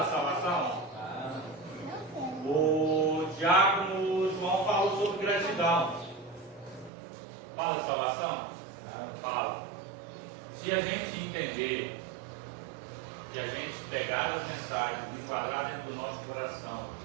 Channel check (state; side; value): drops out; left; at 6.9 s